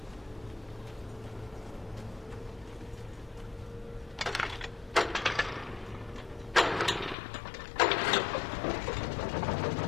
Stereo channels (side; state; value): right; drops out; at 7.2 s